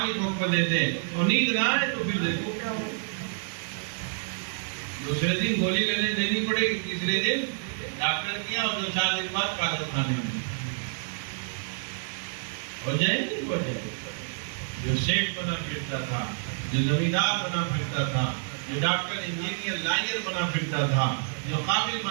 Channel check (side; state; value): left; silent; digital silence